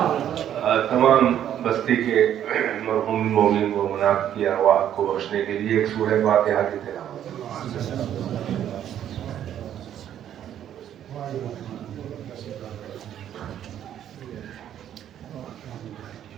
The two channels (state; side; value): quieter; left; 10.5 dB